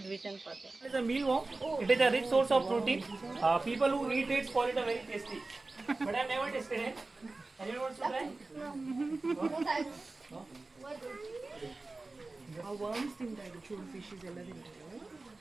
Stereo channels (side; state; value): left; quieter; 3.4 dB